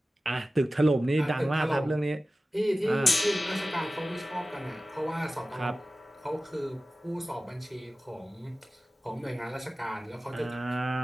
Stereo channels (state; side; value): normal; both; correlation 0.96